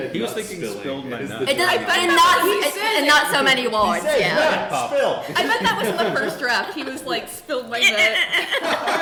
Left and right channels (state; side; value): identical; both; correlation 1.00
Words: he was nut thinking spilling. spilled my It is nut. the- It does, but in not so many words. He said, Yeah. spill. I bet that was in the first draft. He was like, spilled my nut.